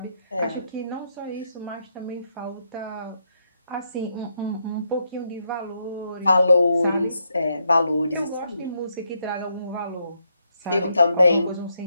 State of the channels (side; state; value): both; inverted; correlation -0.79